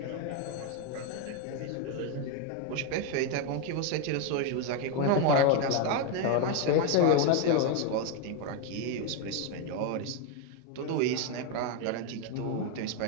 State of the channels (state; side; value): different; both; correlation 0.02